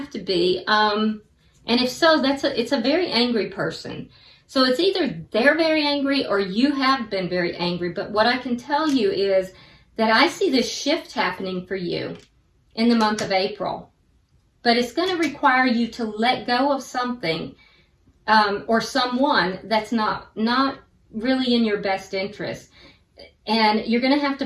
to be. And if so, it's a very angry person. So it's either they're very angry or you have been very angry. But what I can tell you is that I see this shift happening for you in the month of April. But it's going to require you to let go of something or someone that's not really in your best interest. And you're going to have to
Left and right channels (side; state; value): both; identical; correlation 1.00